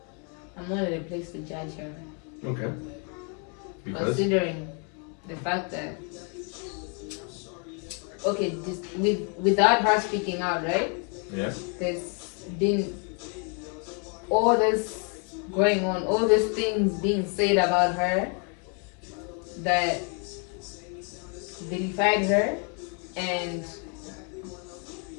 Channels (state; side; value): quieter; right; 37.4 dB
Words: I'm not in a place to judge her. Okay. Because? Considering the fact that, okay, without her speaking out, right? Yeah. There's been all this going on, all these things being said about her that vilified her, and